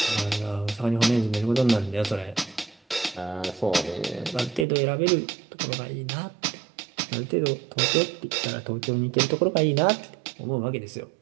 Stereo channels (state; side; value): drops out; left; at 4.7 s